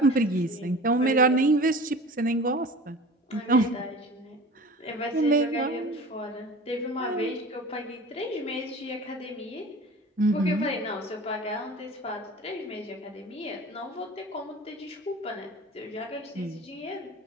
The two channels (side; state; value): both; normal; correlation 0.39